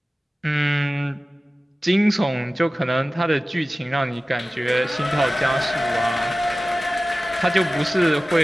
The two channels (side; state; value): both; normal; correlation 0.96